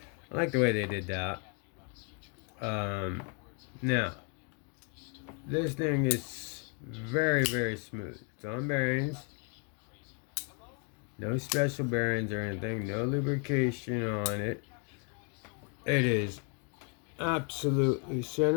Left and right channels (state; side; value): quieter; right; 38.5 dB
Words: I like the way they did that. Now, this thing is very, very smooth. It's on bearings. No special bearings or anything. No lubrication on it. It is absolutely